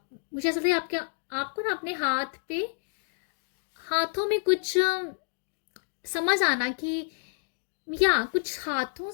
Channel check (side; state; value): right; silent; digital silence